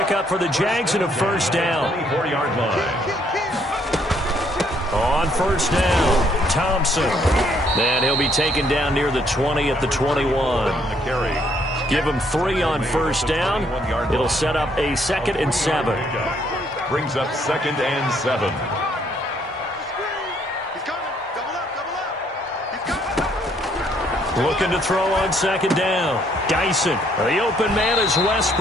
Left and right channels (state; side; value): normal; both; correlation 0.68